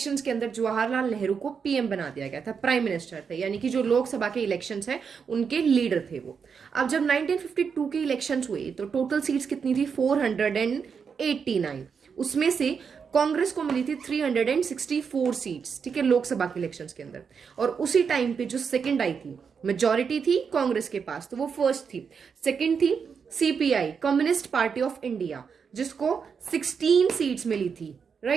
के अंदर जवाहरलाल नेहरू को पीएम बना दिया गया था, प्राइम मिनिस्टर थे, यानी कि जो लोकसभा के इलेक्शंस हैं उनके लीडर थे वो। अब जब 1952 के इलेक्शंस हुए तो टोटल सीट्स कितनी थी, 489। उसमें से कांग्रेस को मिली थी 364 सीट्स, ठीक है, लोकसभा के इलेक्शंस के अंदर। और उसी टाइम पे जो सेकंड आई थी, मेजॉरिटी थी कांग्रेस के पास, तो वो फर्स्ट थी। सेकंड थी CPI, communist party of India, जिसको 16 सीट्स मिली थी,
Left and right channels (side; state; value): left; quieter; 6.2 dB